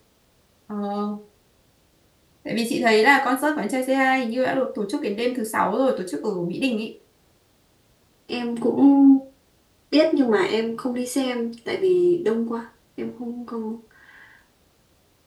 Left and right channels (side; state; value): both; identical; correlation 1.00